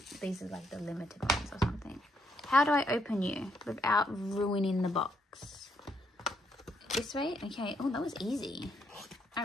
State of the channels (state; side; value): normal; both; correlation 0.75